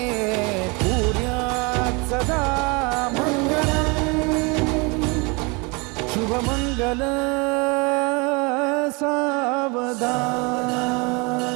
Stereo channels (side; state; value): left; quieter; 29.2 dB